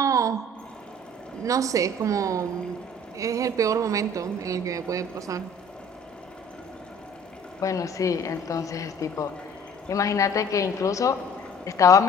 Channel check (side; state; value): both; normal; correlation 0.51